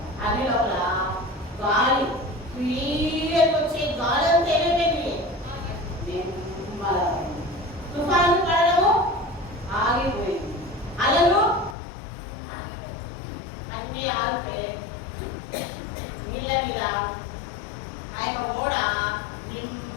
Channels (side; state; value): right; drops out; at 11.8 s